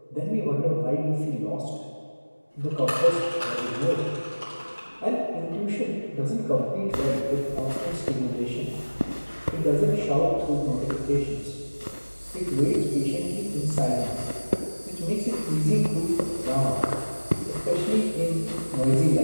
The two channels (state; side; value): inverted; both; correlation -1.00